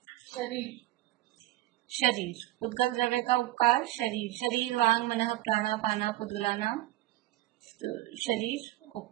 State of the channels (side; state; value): left; quieter; 16.5 dB